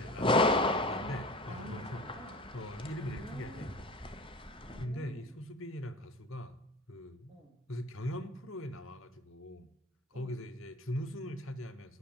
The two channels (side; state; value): both; normal; correlation 0.37